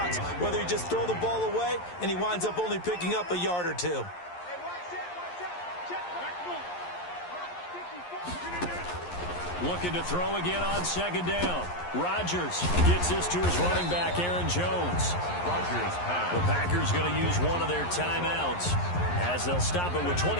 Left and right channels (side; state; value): right; late; 11 ms